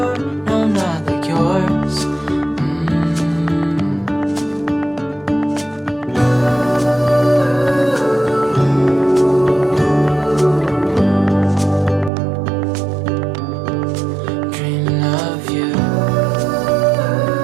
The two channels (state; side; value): drops out; left; at 12.1 s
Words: no, not like yours. Dreaming of you.